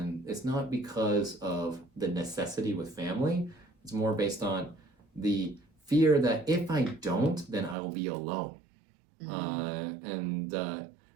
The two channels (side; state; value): left; drops out; at 7.8 s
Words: it's not because of the necessity with family. It's more based on the fear that if I don't, then I will be alone.